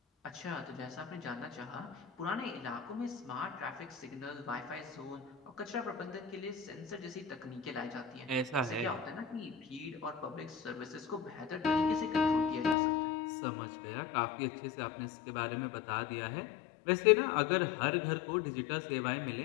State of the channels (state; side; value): drops out; right; at 12.8 s